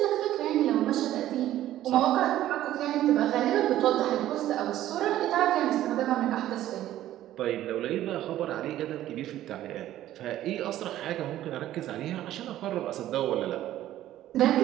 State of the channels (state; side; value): quieter; left; 13.4 dB